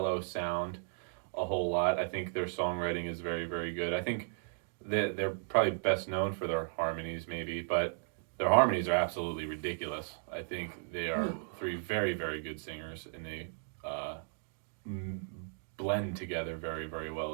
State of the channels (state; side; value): silent; left; digital silence